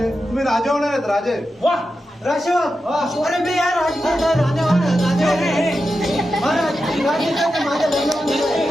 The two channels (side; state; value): both; normal; correlation 0.90